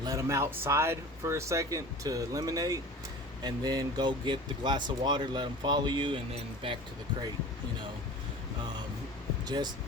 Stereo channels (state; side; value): normal; both; correlation 0.38